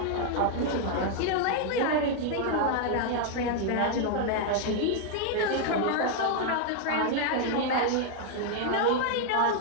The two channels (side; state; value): both; different; correlation 0.00